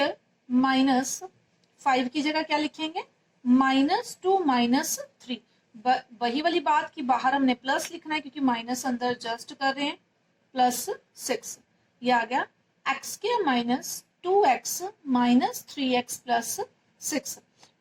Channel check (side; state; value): both; identical; correlation 1.00